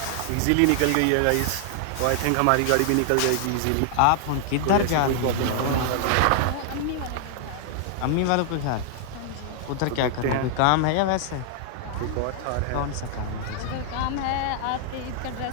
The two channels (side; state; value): both; different; correlation -0.01